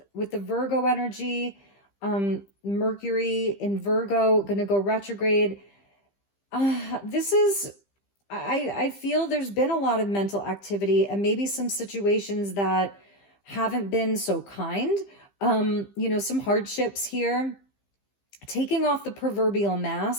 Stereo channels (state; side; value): late; right; 15 ms